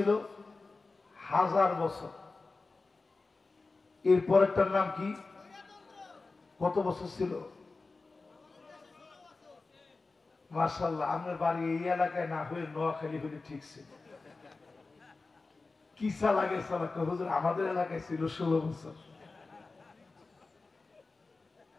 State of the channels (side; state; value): right; quieter; 3.7 dB